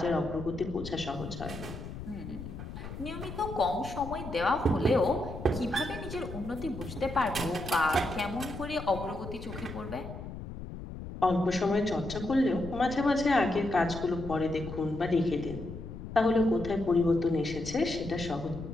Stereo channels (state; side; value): noise; left; rumble, 10 dB below the sound